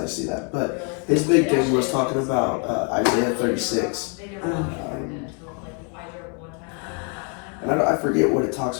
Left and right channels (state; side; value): quieter; right; 38.3 dB